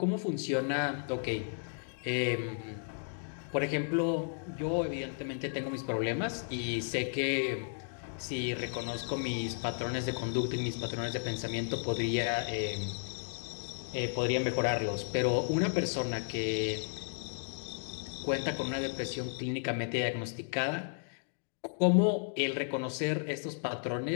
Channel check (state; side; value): silent; right; digital silence